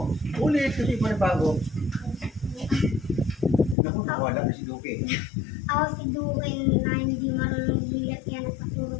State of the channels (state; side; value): drops out; right; at 3.8 s